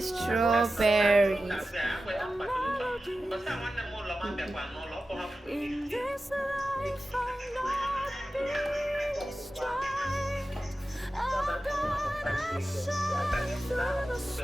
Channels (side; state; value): both; normal; correlation 0.93